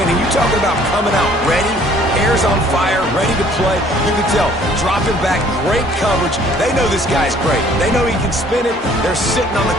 and you're talking about coming out ready, hair's on fire, ready to play. You can tell, dropping back, great coverage. They know this guy's great. They know he can spin it. They're sitting on the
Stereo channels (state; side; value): normal; both; correlation 0.57